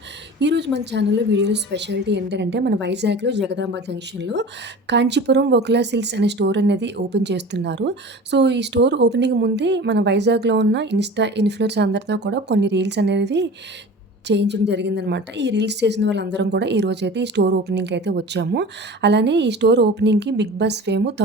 ఈరోజు మన ఛానల్లో వీడియోలో స్పెషాలిటీ ఏంటంటే మన వైజాగ్లో జగదాంబ జంక్షన్లో కాంచీపురం వకులా సిల్క్స్ అనే స్టోర్ అనేది ఓపెన్ చేస్తున్నారు. సో ఈ స్టోర్ ఓపెనింగ్ ముందే మన వైజాగ్లో ఉన్న ఇన్ఫ్లుయెన్సర్స్ అందరితో కూడా కొన్ని రీల్స్ అనేది చేయించడం జరిగిందనమాట. ఈ రీల్స్ చేసిన వాళ్ళందరం కూడా ఈరోజైతే ఈ స్టోర్ ఓపెనింగ్కి అయితే వచ్చాము. అలానే ఈ స్టోర్ ఓపెనింగ్కి బిగ్ బాస్ ఫేమ్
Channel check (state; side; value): normal; both; correlation 0.37